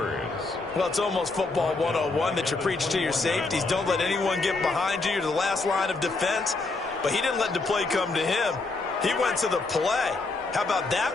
Well, it's almost football 101 that you preach to your safeties. Don't let anyone get behind you. You're the last line of defense. But he didn't let the play come to him. He went to the play. How about that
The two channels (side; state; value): right; quieter; 3.5 dB